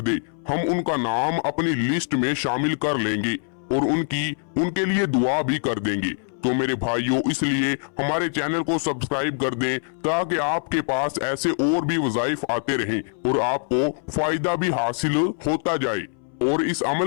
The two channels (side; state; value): right; silent; 63 dB below the other